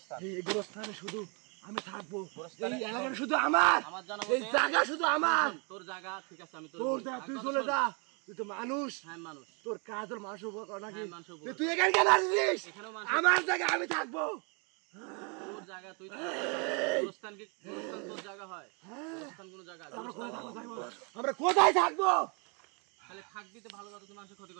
এই গোরস্থানে শুধু আমি থাকবো গোরস্থানে- এই এলাকাটা শুধু আমার আমার জানা এই মতে জায়গা শুধু আমার তোর জায়গা ঠিক আছে, আমি তোর তোর বলি। জায়গা আর তুই কথা চলে শোন। যা তুই তো মানুষ হ্যাঁ মানুষ, তোর কাজ তোর মানুষের উপর কর নাকি হ্যাঁ, মানুষের উপর। তুই এখানে কেন আসছিস এখানেও মানুষ, আমার জায়গা আমি থাকবো তোর জায়গা তুই গোরস্থান কি গোরস্থান তোর জায়গা হয়? গোরস্থান কোনো জায়গা? আমরা গোরস্থান কোথায় থাকবো? আমরা কোথায় থাকবো তাহলে থাকবি তো ভালো কথা, তুই মানুষের ক্ষতি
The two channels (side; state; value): left; quieter; 34.4 dB